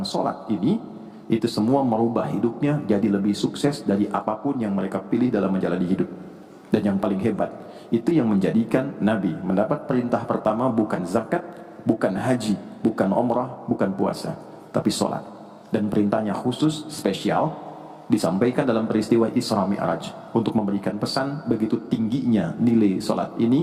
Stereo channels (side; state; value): both; identical; correlation 1.00